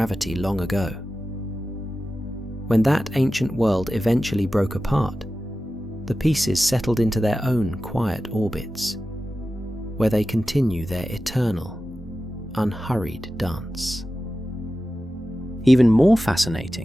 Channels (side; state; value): both; normal; correlation 0.94